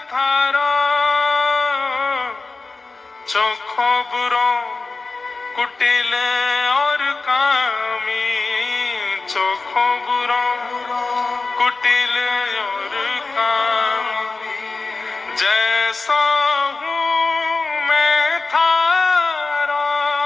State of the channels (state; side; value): quieter; right; 3.7 dB